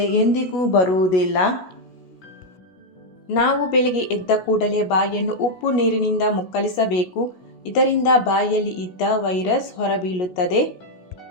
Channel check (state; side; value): late; right; 16 ms